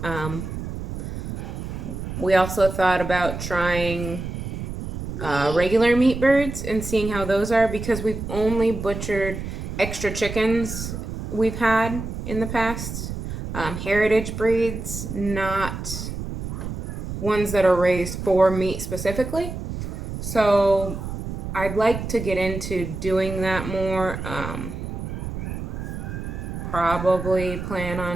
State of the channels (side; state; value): right; noise; rumble, 6 dB below the sound